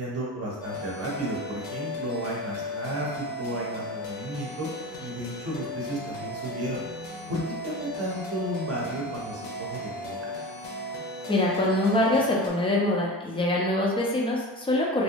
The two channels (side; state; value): both; normal; correlation 0.31